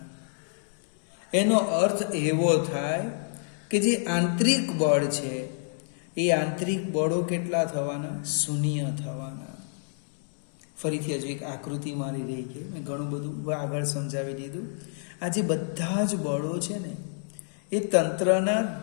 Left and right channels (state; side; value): silent; right; digital silence